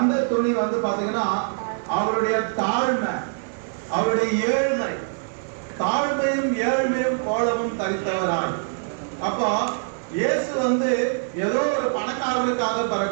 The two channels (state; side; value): silent; left; digital silence